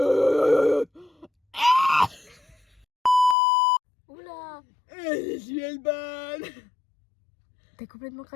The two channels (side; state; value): right; drops out; at 3.4 s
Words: Oula. Je suis Elban. T'es complètement